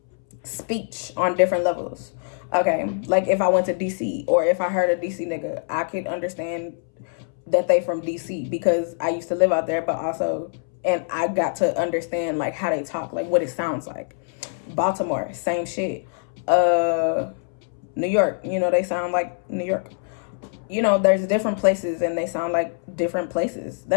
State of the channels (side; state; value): right; silent; 63 dB below the other